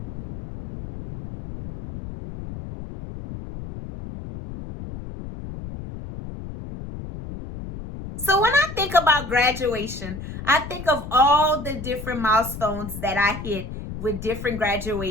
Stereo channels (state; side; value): noise; left; rumble, 10 dB below the sound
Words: So when I think about graduation, I think of all the different milestones that I hit with different